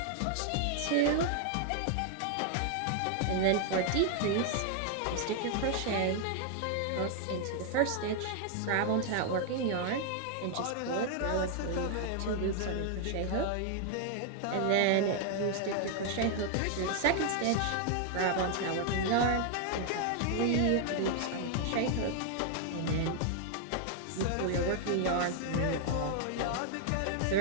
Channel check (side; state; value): both; different; correlation 0.00